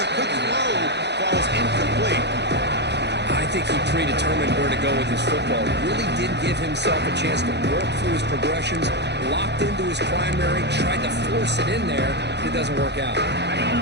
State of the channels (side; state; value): left; late; 0.50 ms